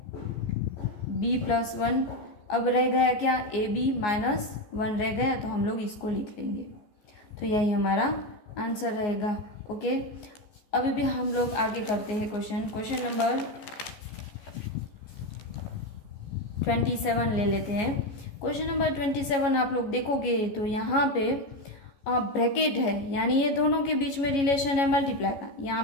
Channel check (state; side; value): late; right; 14 ms